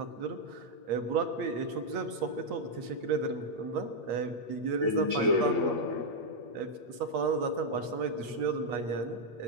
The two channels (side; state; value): left; late; 8.4 ms